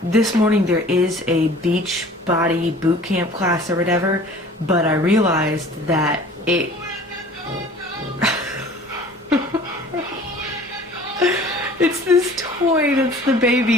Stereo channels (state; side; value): normal; both; correlation 0.47